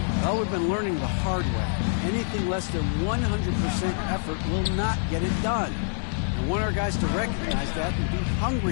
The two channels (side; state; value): right; silent; digital silence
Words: well, we've been learning the hard way. Anything less than 100% effort will not get it done. I want our guys to recognize that and be